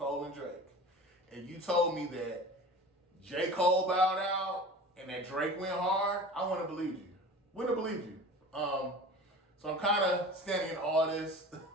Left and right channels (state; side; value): normal; both; correlation 0.38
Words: and Drake, and you told me that J. Cole bowed out and that Drake went hard, I wouldn't have believed you. Wouldn't have believed you. So I'm kind of standing in awe of this.